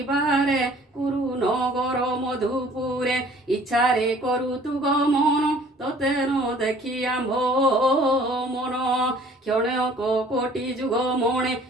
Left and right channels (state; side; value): normal; both; correlation 0.53